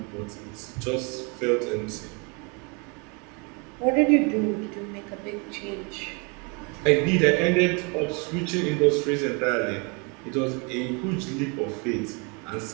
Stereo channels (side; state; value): left; quieter; 32.4 dB